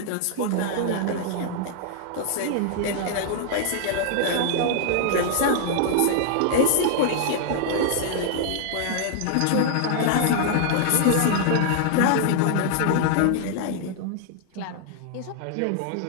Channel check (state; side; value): different; both; correlation -0.01